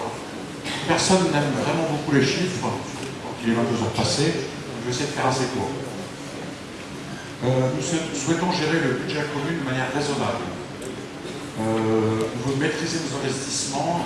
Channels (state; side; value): identical; both; correlation 1.00